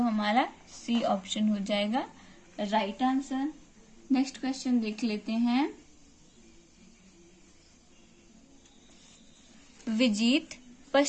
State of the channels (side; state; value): both; identical; correlation 1.00